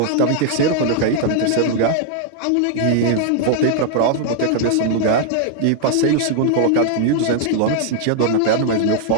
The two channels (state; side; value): different; both; correlation -0.01